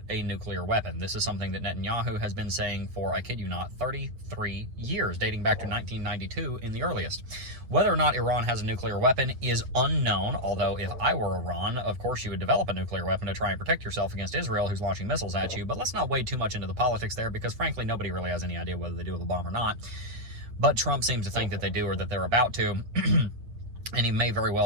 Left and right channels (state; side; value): late; left; 8.2 ms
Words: a nuclear weapon. This is something that Netanyahu has been saying for, I kid you not, 33 years, dating back to 1992 in the earliest. Whether or not Iran has a nuclear weapon is unknown, although if I were Iran, of course you would develop a nuclear weapon to try and protect yourself against Israel, who's launching missiles at you. But let's not wade too much into the politics there, because frankly nobody really has any idea whether they do with a bomb or not. But Trump seems to think that they do, or that they're about to. And he may very